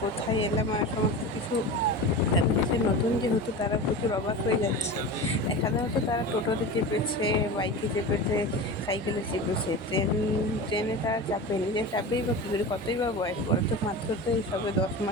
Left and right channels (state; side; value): normal; both; correlation 0.29